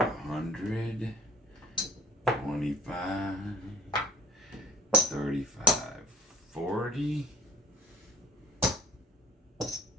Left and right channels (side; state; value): both; normal; correlation 0.50